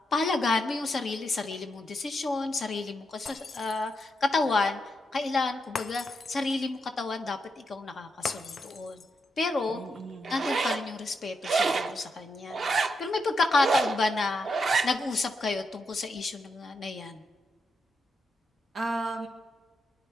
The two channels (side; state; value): both; normal; correlation 0.83